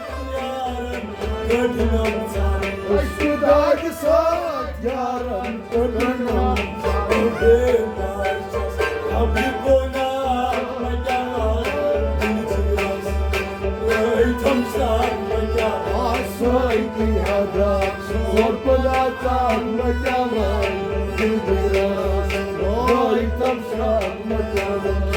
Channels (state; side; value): identical; both; correlation 1.00